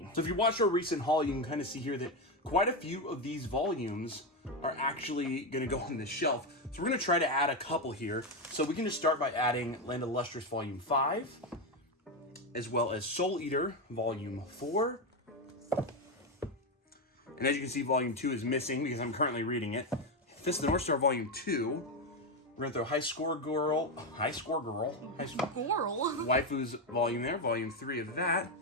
So if you watched our recent haul, you can kind of see here that quite a few of these volumes are actually going to go on this shelf. So we're going to try to add a couple here. So we can just start by adding Land of the Lustrous Volume 5, as well as Soul Eater Volume 4. And as you can see, Volume 2 is missing because I'm currently reading it. Fist of the North Star Volume 2. We're gonna throw High Score Girl, Waifu's volume there, volume 3 of that.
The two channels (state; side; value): normal; both; correlation 0.10